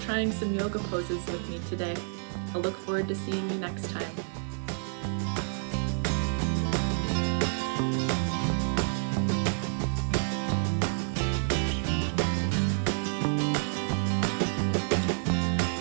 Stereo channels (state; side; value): silent; left; digital silence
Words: some yoga poses with me today. I look forward to seeing you next time.